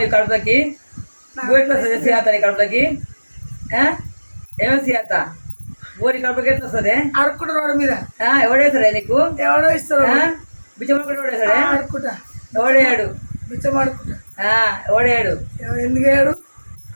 నీ కడుపులకి? బువ్వ ఎట్లా వస్తుంది సుజాత నీ కడుపులకి? ఏమో సుజాత బువ్వ నీ కడుపులకి ఎట్లా వస్తుంది? అడుక్కుంటారు రోడ్డు మీద. ఎవడేస్తాడే నీకు? ఎవడో ఇస్తారు బిచ్చమడుకుంటే ఎవడేస్తాడే? అడుక్కుంటా. ఎవడేయాడు? బిచ్చం అడుక్కుంటా. ఎవడేయాడు? ఎందుకు వేయడు?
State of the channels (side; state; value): both; inverted; correlation -1.00